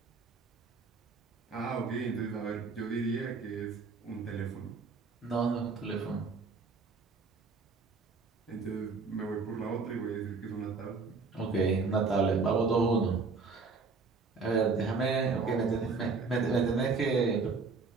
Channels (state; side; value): quieter; left; 4.5 dB